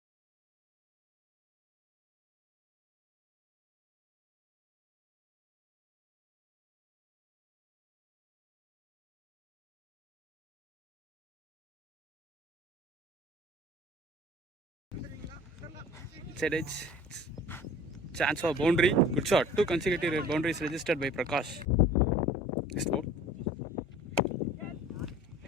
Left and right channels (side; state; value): both; normal; correlation 0.45